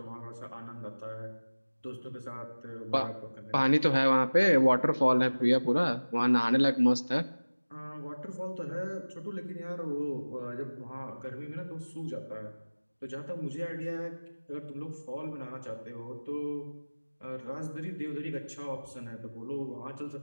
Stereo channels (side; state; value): both; inverted; correlation -1.00